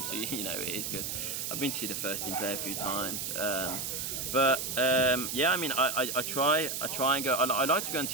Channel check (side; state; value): right; noise; hiss, 3 dB below the sound